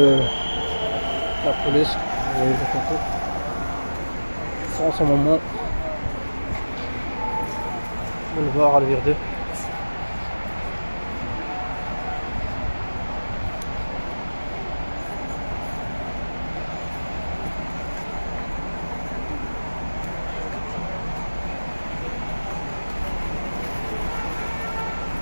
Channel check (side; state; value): both; inverted; correlation -1.00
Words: la police, vous voyez sont en ce moment boulevard Alvire 2.